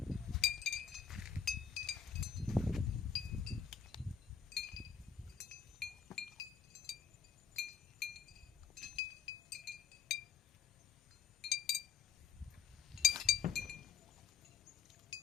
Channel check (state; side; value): quieter; right; 7.1 dB